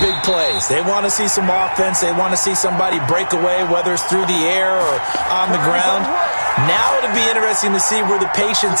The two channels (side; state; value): both; inverted; correlation -1.00